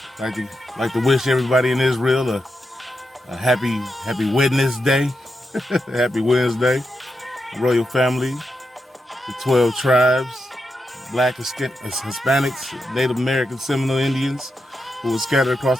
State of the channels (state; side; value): normal; both; correlation 0.86